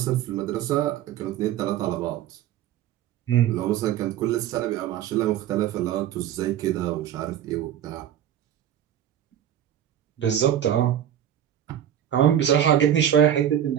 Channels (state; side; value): quieter; left; 10.5 dB